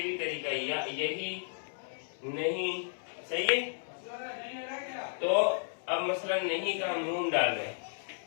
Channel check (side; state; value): right; silent; digital silence